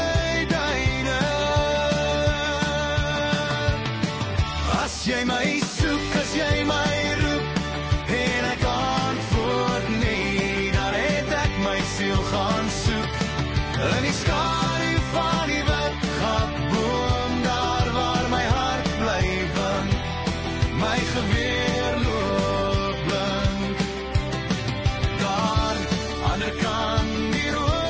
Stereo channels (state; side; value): identical; both; correlation 1.00